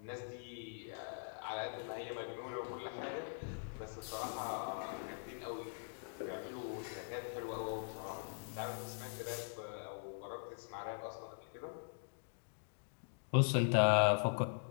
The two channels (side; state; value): right; silent; digital silence